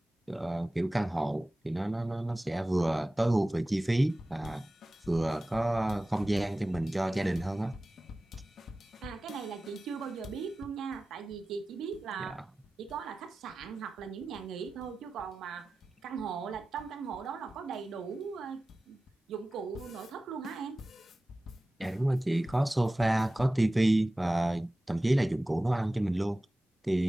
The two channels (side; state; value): both; normal; correlation 0.96